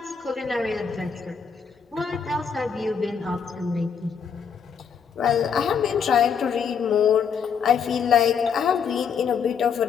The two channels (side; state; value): right; quieter; 6.7 dB